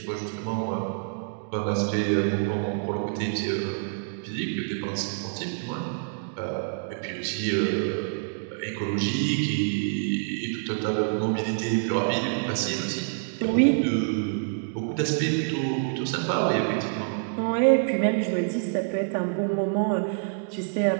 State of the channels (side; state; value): left; silent; digital silence